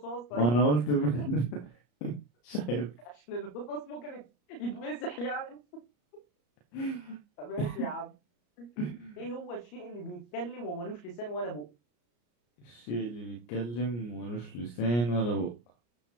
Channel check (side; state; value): right; late; 34 ms